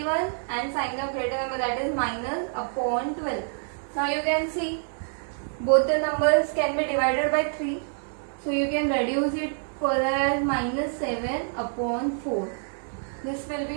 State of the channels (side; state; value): left; silent; 55 dB below the other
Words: and sign of greater number, that is minus upon 12. Now you can see both the numbers can be divided by 3, so you can reduce it further as minus 7 upon 4. This will be